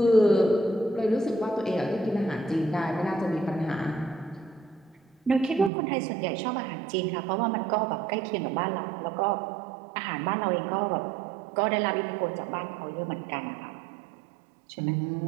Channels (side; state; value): left; drops out; at 5.7 s